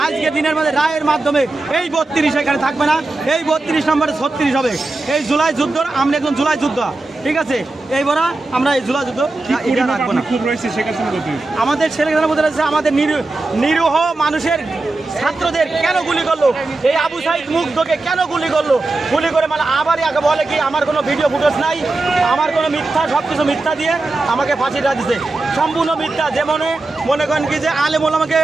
আজকে দিনের মধ্যে রায়ের মাধ্যমে এই 32 এখানে থাকবে না, এই 32 নম্বরে 36 হবে। এই জুলাই যুদ্ধ, আমরা একজন জুলাই যুদ্ধ, ঠিক আছে? এইবার আমরা এই জুলাই যুদ্ধ রাখবো না। আমাদের ছেলেখানা বলতে রয়েছে আমাদের নিরীহ মানুষের ছাত্রদের কেন গুলি করলো, এই আবু সাইদ মুগ্ধকে কেন গুলি করলো, গুলি করে মানে আবার আগে বলে কি আমার কোনো ভিডিও ফুটেজ নাই, আমার কোনো মিথ্যা, সব কিছু মিথ্যা দিয়ে আমাকে ফাঁসির রায় দিছে, সম্পূর্ণ মিথ্যা। যেমন মনে করেন কি যে আলেমুল আমাকে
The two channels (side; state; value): left; quieter; 3.1 dB